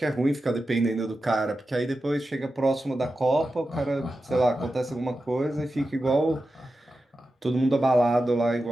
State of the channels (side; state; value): both; normal; correlation 0.91